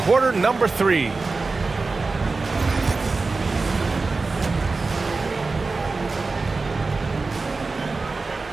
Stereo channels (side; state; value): left; quieter; 3.9 dB